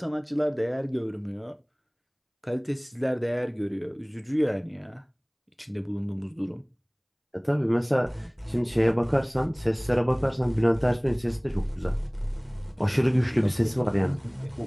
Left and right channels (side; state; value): both; identical; correlation 1.00